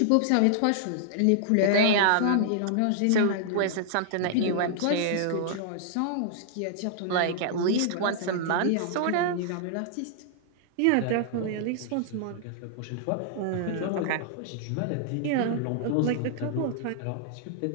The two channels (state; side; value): different; both; correlation -0.01